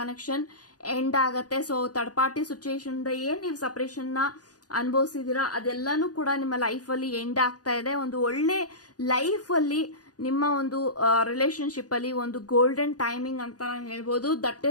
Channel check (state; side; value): late; right; 0.68 ms